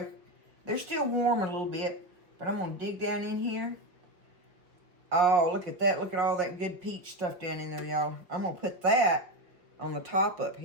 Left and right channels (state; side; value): late; left; 5.3 ms